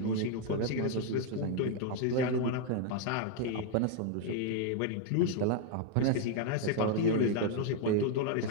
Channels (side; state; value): both; different; correlation 0.00